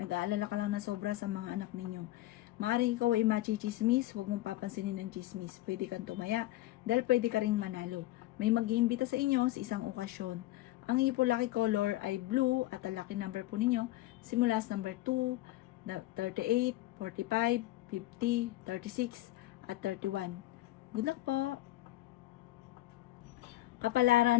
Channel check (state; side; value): quieter; right; 16.4 dB